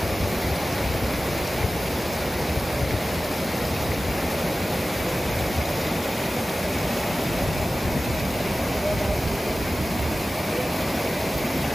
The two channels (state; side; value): normal; both; correlation 0.95